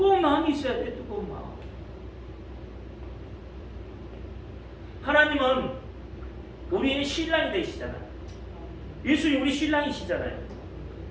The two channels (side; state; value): both; identical; correlation 1.00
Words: 마음이 있어야 돼요. 뜨거운 마음. 하나님은 우리의 신랑이 되시잖아요. 예수님 우리 신랑이시잖아요.